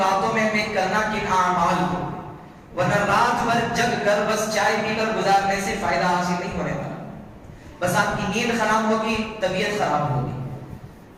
میں ہمیں کرنا کن اعمال کو، ورنہ رات بھر جگ کر بس چائے پی کر گزارنے سے فائدہ حاصل نہیں ہونے والا. بس آپ کی نیند خراب ہوگی، طبیعت خراب ہوگی.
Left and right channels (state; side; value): identical; both; correlation 1.00